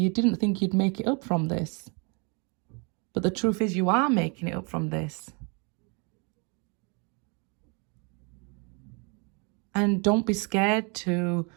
didn't think you'd make it up from this. But the truth is, you are making it up from this. And don't be scared to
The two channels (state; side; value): quieter; left; 33.7 dB